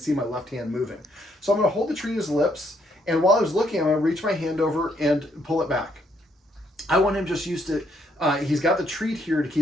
my left hand moving. So I'm going to hold the treat at his lips, and while I was looking, I'm going to reach my hand over and pull it back. I want him just used to, he's got the treat here to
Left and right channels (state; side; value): normal; both; correlation 0.71